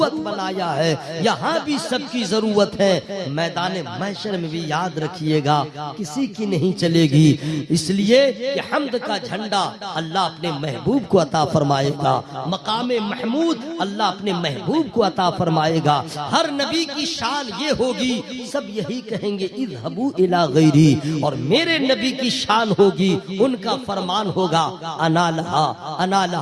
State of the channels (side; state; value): both; identical; correlation 1.00